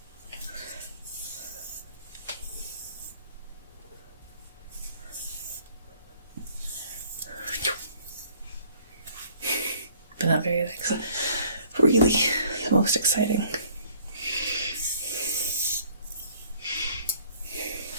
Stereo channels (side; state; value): both; inverted; correlation -0.58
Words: But not very, like, really the most exciting.